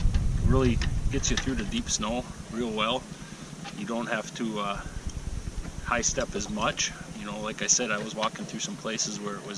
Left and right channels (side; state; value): both; identical; correlation 1.00